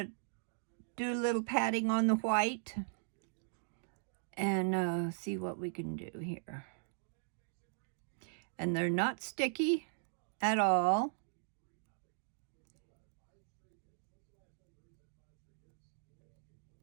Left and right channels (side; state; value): left; silent; digital silence